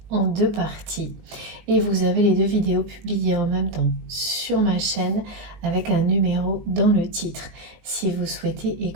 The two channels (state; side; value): late; left; 19 ms